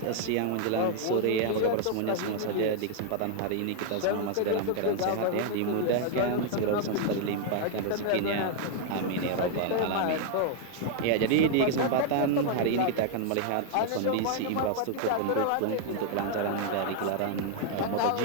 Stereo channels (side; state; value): both; different; correlation 0.00